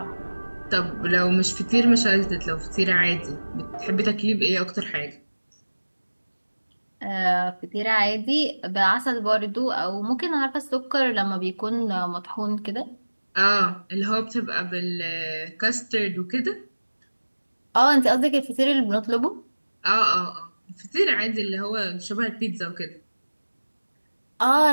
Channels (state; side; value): inverted; both; correlation -1.00